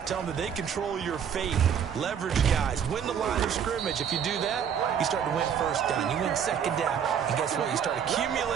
Tell them that they control your fate. Leverage guys. Win the line of scrimmage. If you do that, you start to win first down. You win second down. And guess what? You start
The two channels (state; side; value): quieter; left; 8.1 dB